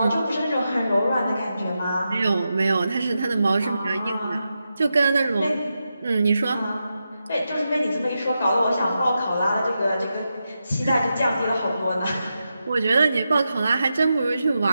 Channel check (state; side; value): inverted; both; correlation -0.88